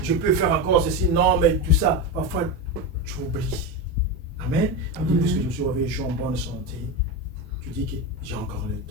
je peux faire encore ceci, non, mais tout ça. Parfois, tu oublies. Amen. Puisque je suis réveillé, je suis en bonne santé. Tu dis que j'ai encore le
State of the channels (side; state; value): both; normal; correlation 0.17